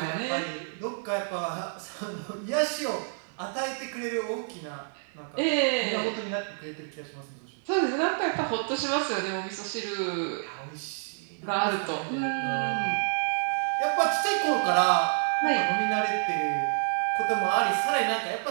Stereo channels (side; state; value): left; silent; digital silence